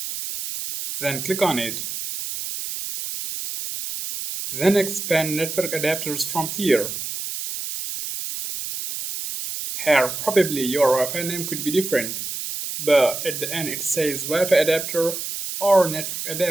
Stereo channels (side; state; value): right; noise; hiss, 6 dB below the sound